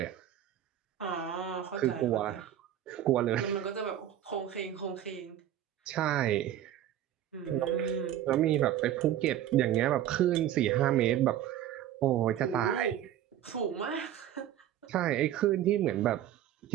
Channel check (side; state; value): left; quieter; 11.5 dB